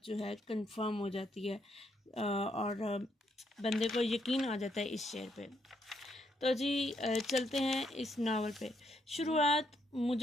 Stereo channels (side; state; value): both; normal; correlation 0.75